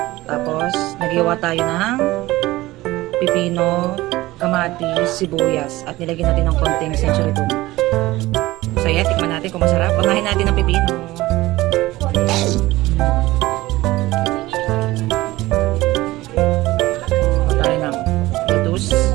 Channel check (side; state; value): left; quieter; 18.2 dB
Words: Tapos naghiwa tayo ng pipino, kamatis, sibuyas at nilagyan natin ng konting century tuna. So yeah, tikman natin kung masarap. Unahin natin ng pipino. Tayo ng lettuce.